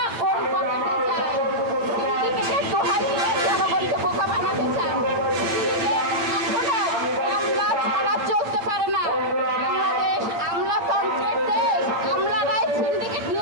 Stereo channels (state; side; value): late; left; 8.8 ms